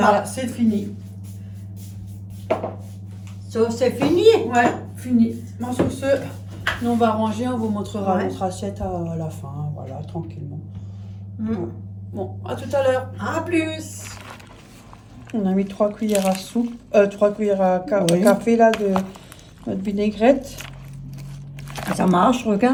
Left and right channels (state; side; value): identical; both; correlation 1.00